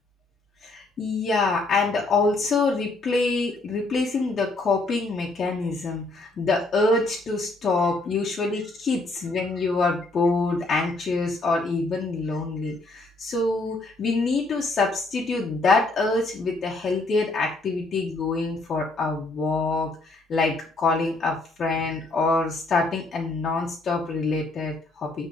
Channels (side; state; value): right; quieter; 3.1 dB